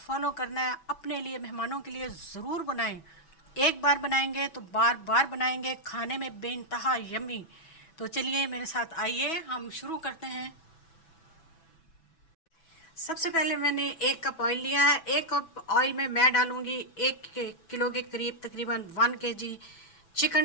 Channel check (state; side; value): late; right; 6.1 ms